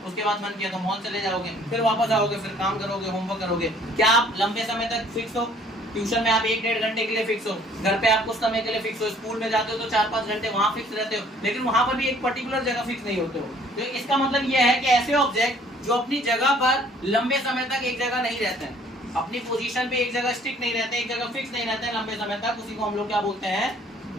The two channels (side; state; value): both; normal; correlation 0.58